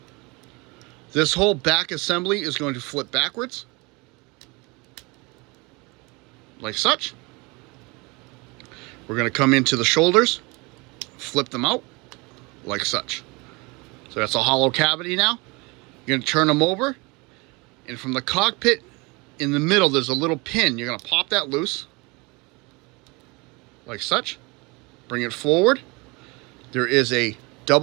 This whole back assembly is going to flip backwards, like such. We're going to come into the shoulders, flip them out, like such. So that's a hollow cavity now. You're going to turn them over, and from the cockpit in the middle, there's a little pin. You're going to pop that loose, like such. Bring it forward. There is a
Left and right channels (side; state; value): left; quieter; 26.7 dB